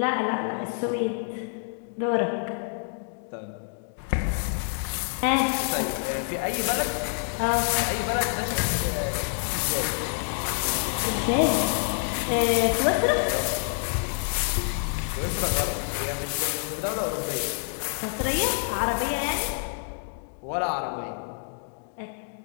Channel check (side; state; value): right; silent; 60 dB below the other